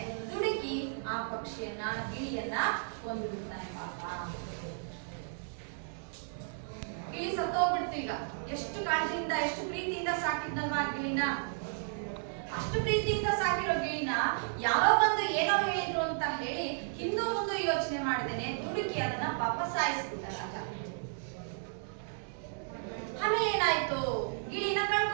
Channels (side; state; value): left; silent; digital silence